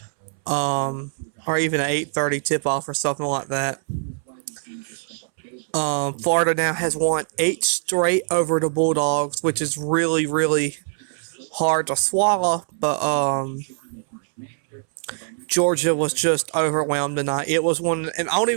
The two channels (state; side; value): silent; left; 64 dB below the other